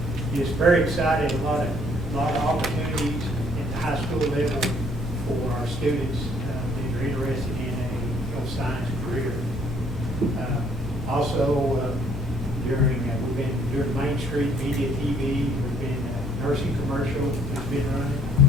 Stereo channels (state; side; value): normal; both; correlation 0.63